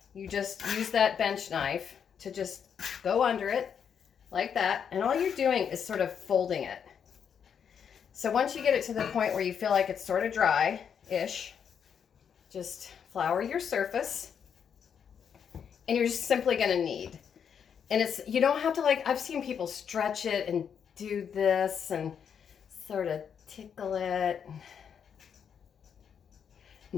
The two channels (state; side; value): quieter; right; 7.6 dB